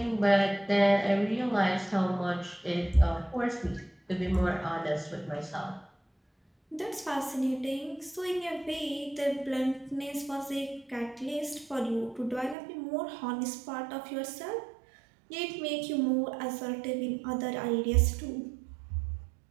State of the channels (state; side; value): drops out; left; at 12.6 s